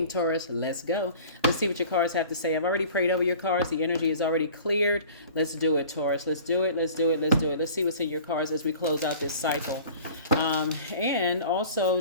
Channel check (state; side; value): inverted; both; correlation -0.44